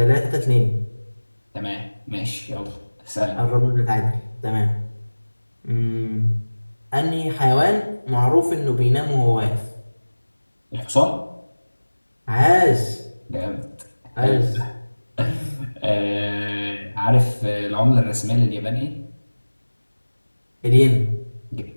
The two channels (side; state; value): both; inverted; correlation -1.00